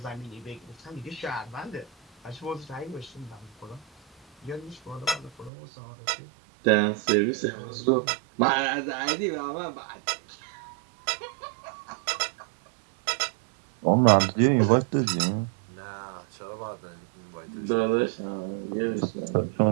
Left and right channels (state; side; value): drops out; left; at 5.5 s